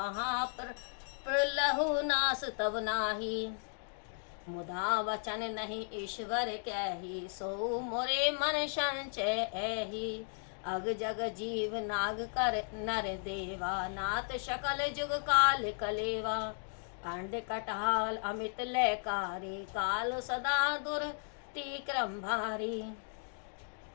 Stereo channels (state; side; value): silent; right; 54 dB below the other